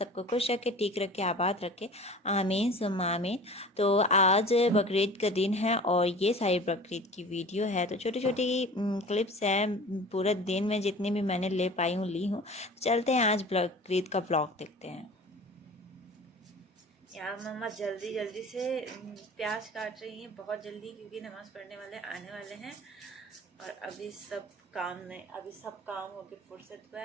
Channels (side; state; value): both; normal; correlation 0.41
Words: खुश रखे, ठीक रखे, आबाद रखे। आमीन सुम्मा आमीन। तो आज बकरीद का दिन है और ये सारी बकरीद की वीडियो है। तो छोटी छोटी क्लिप्स हैं, पूरे दिन में जितनी भी मैंने ले पाई हूँ ली हूँ। चलते हैं आज बकरीद का व्लॉग देखते हैं। यहाँ मम्मा जल्दी जल्दी से प्याज काट रही हैं, बहुत जल्दी, क्योंकि नमाज़ पढ़ने वाले आने वाले हैं। और अभी सब काम हो के फुर्सत हुआ